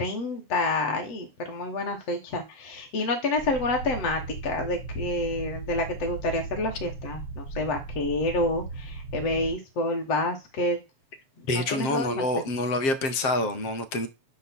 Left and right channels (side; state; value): right; late; 7.5 ms